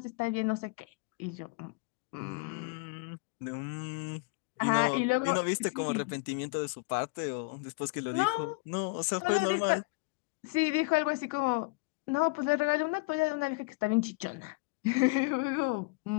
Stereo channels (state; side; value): quieter; right; 27.5 dB